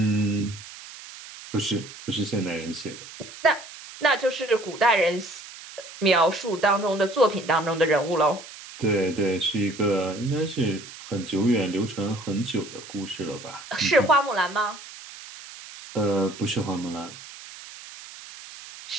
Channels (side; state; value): right; noise; hiss, 15 dB below the sound